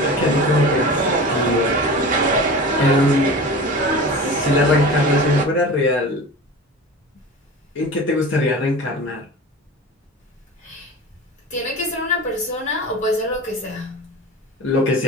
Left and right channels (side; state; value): both; normal; correlation 0.33